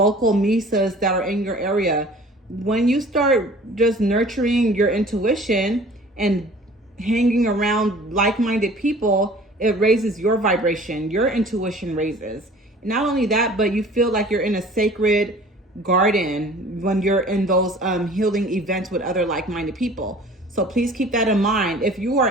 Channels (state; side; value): normal; both; correlation 0.48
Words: misas that are in your area. When you start just nurturing your intuition and hanging around like-minded people, it raises your vibration. Your intuition raises. Not only that, but you feel like you're in a sacred garden when you're in those healing events with other like-minded people. So please keep that in mind. If you are